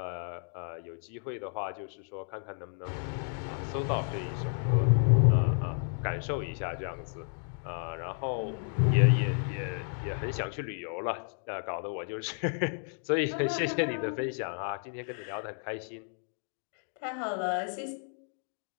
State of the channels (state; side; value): silent; right; 56 dB below the other